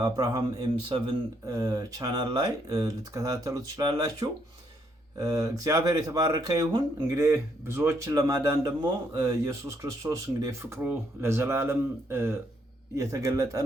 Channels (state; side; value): normal; both; correlation 0.72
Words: ኤም7 ቻናል ላይ ልትከታተሉ ትችላላችሁ። እግዚአብሔር የተባረከ ይሁን። እንግዲህ ብዙዎችን ለማዳን ደግሞ ኢየሱስ ክርስቶስ እንግዲህ ፍቅሩ ለዘላለም የተገለጠ